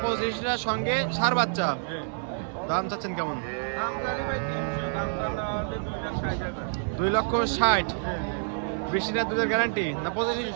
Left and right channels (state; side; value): silent; left; 59 dB below the other